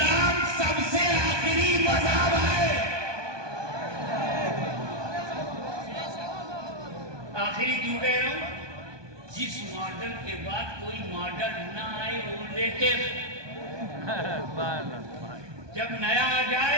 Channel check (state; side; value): late; left; 1.2 ms